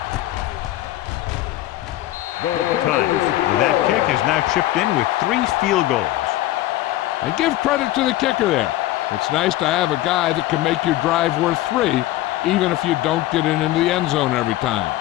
Times. That kick is now chipped in with 3 field goals. And give credit to the kicker there. It's nice to have a guy that can make your drive worth 3, even if you don't get it into the end zone every time.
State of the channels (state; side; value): quieter; right; 15.6 dB